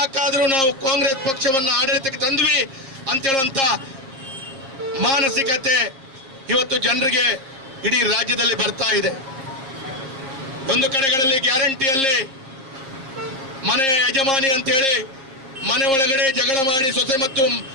ನಾವು ಕಾಂಗ್ರೆಸ್ ಪಕ್ಷವನ್ನು ಆಡಳಿತಕ್ಕೆ ತಂದ್ವಿ ಅಂತ ಹೇಳುವಂತ ಮಾನಸಿಕತೆ ಇವತ್ತು ಜನರಿಗೆ ಇಡೀ ರಾಜ್ಯದಲ್ಲಿ ಬರ್ತಾ ಇದೆ. ಒಂದು ಕಡೆಗಳಲ್ಲಿ ಗ್ಯಾರಂಟಿಯಲ್ಲಿ ಮನೆಯ ಯಜಮಾನಿ ಅಂತೇಳಿ ಮನೆ ಒಳಗಡೆ ಜಗಳ ಮಾಡಿ ಸೊಸೆ ಮತ್ತು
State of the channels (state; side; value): late; left; 7.5 ms